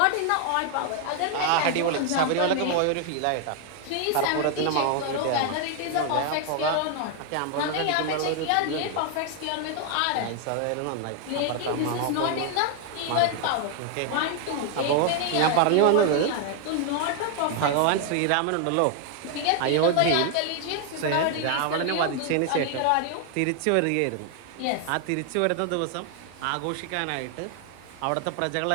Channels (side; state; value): both; different; correlation 0.00